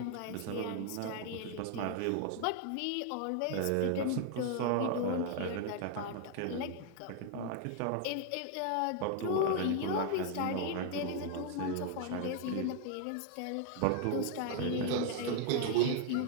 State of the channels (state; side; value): different; both; correlation 0.00